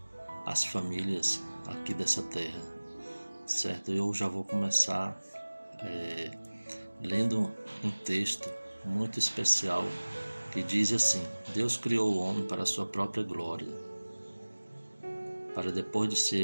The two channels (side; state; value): both; inverted; correlation -1.00